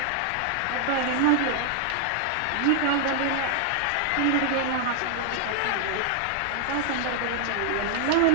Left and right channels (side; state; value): both; different; correlation 0.00